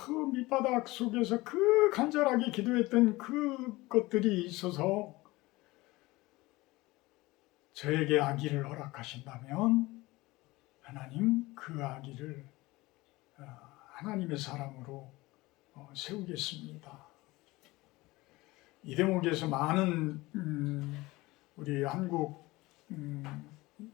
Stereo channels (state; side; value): quieter; right; 20.6 dB